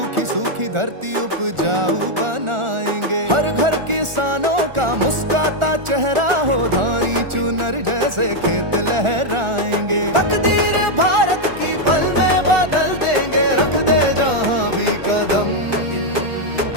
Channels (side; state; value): left; late; 1.4 ms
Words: सूखी धरती उपजाऊ बनाएंगे। हर घर किसानों का मुस्काता चेहरा हो, धानी चुनर जैसे खेत लहराएंगे। तकदीर भारत की पल में बदल देंगे, रख दे जहां भी कदम।